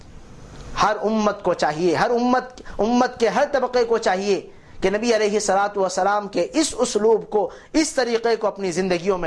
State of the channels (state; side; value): identical; both; correlation 1.00